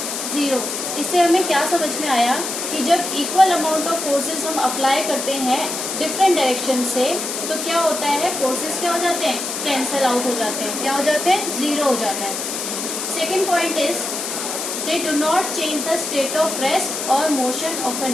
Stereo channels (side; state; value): left; noise; hiss, 4 dB below the sound